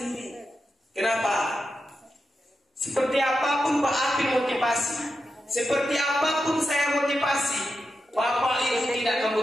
Kenapa? Seperti apapun Pak Apin motivasi, seperti apapun saya motivasi, Bapak Ibu tidak akan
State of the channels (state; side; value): normal; both; correlation 0.88